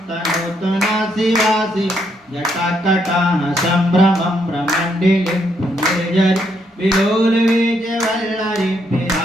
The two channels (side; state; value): both; normal; correlation 0.75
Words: तनोतुना शिवासि जटाकटाः सम्भ्रमं भ्रमण्डिलिं पुण्यजरि विलोलवीजवल्लरि